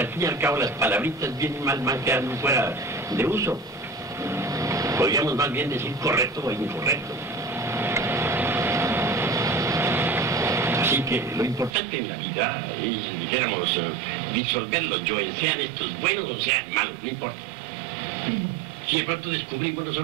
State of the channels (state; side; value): drops out; left; at 11.7 s